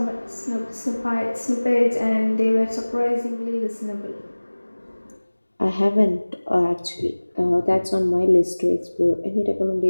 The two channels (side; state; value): both; inverted; correlation -1.00